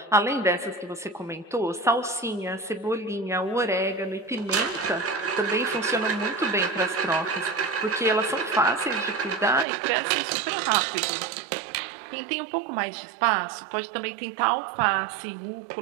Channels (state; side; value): drops out; left; at 9.7 s